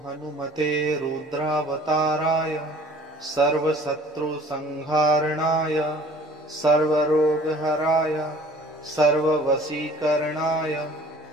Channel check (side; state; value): both; normal; correlation 0.51